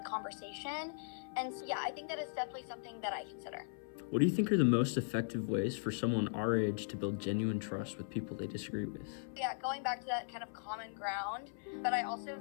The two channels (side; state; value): right; silent; 52 dB below the other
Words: conversation. And so, yeah, I think that is definitely something that I consider. What do you think are the most effective ways for someone our age to build genuine trust with people they disagree with? Yeah, going back to that kind of common ground, but I also